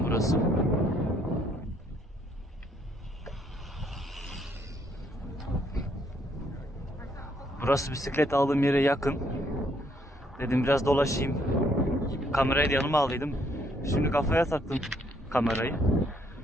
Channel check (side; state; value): both; normal; correlation 0.69